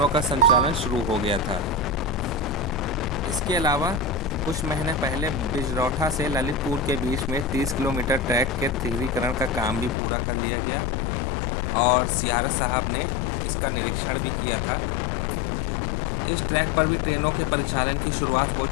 का संचालन शुरू हो गया था। इसके अलावा कुछ महीने पहले बिजरौठा से ललितपुर के बीच में 30 किलोमीटर ट्रैक के तीव्रीकरण का काम भी पूरा कर लिया गया और CRS साहब ने इसका निरीक्षण भी किया था। इस ट्रैक पर भी ट्रेनों के परिचालन की शुरुआत हो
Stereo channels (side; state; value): right; drops out; at 10.0 s